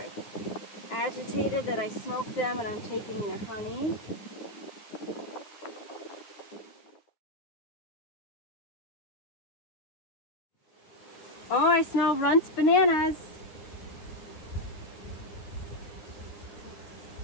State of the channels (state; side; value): late; right; 9.6 ms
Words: agitated that I smoked them and I'm taking their honey. Oh, I smell Runt's bananas.